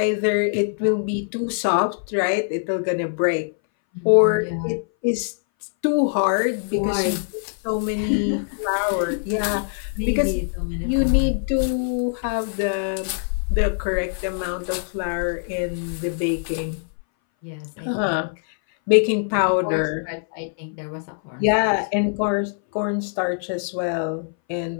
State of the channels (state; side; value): silent; right; 60 dB below the other